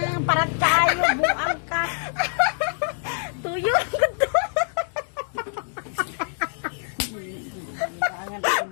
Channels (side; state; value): right; silent; digital silence